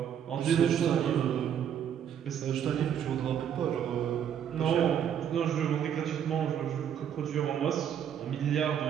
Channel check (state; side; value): quieter; left; 9.0 dB